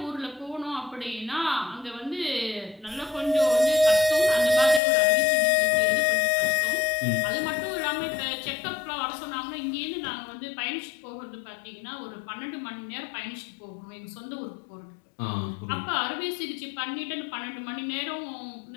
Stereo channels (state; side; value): drops out; right; at 4.8 s